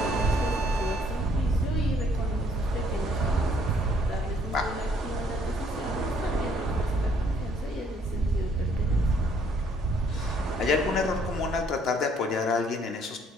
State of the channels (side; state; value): both; normal; correlation 0.64